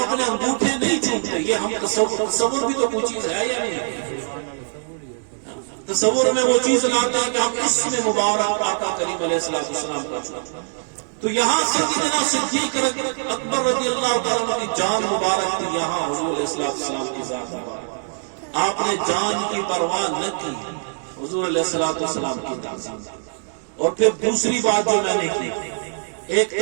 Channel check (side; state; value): left; silent; digital silence